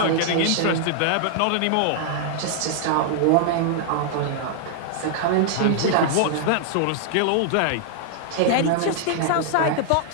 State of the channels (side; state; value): both; different; correlation -0.01